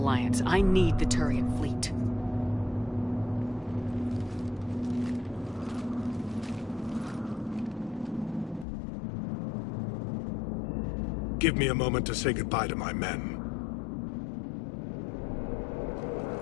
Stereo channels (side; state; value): right; drops out; at 8.7 s